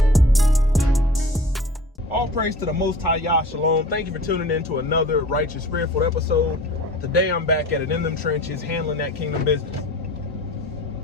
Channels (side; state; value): both; normal; correlation 0.42